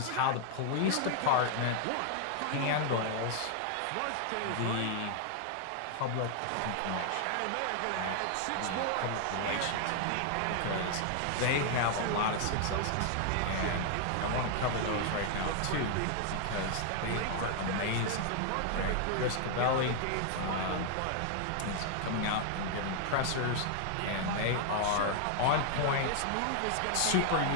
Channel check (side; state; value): both; different; correlation 0.00